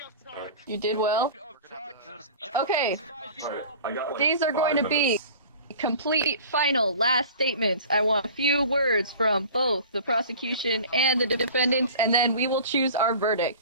You did well. Okay. These are going to be complete, final, last statements. I want a few words from both the prosecution and the defendants, and then we will choose our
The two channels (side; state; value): both; inverted; correlation -0.41